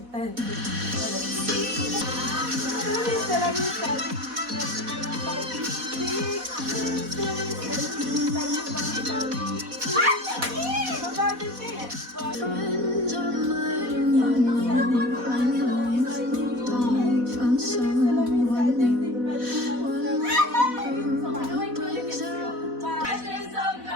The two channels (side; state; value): left; late; 4.1 ms